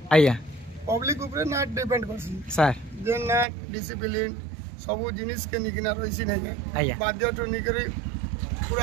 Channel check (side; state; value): left; drops out; at 3.5 s